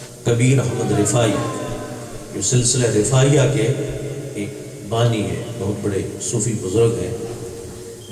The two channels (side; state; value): both; identical; correlation 1.00